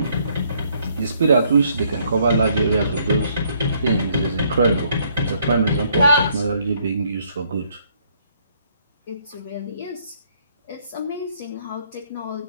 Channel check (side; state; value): both; inverted; correlation -0.67